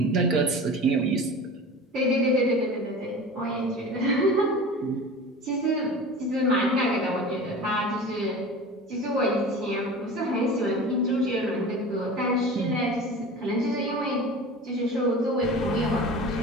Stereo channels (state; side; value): normal; both; correlation 0.36